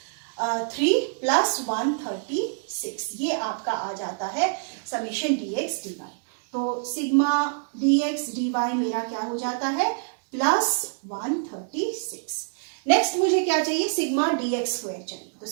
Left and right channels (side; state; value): left; silent; digital silence